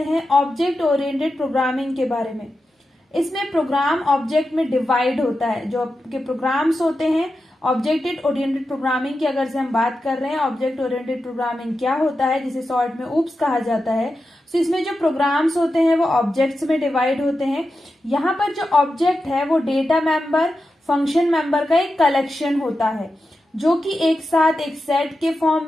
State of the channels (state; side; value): normal; both; correlation 0.90